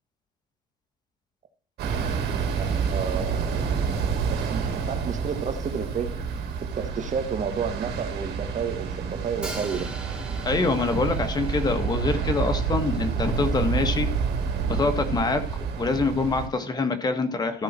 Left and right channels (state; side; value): normal; both; correlation 0.50